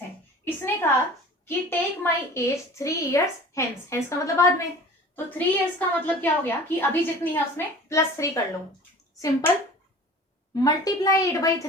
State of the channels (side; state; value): both; normal; correlation 0.42